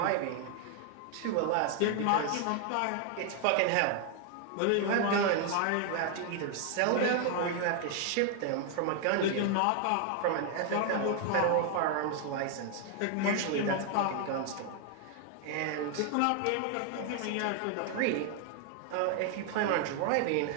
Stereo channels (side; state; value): both; different; correlation 0.00